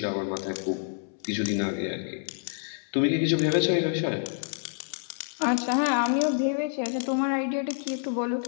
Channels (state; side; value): silent; right; 59 dB below the other